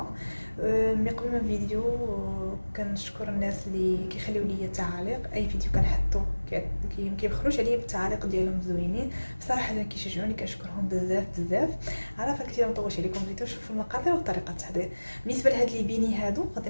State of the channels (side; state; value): both; inverted; correlation -1.00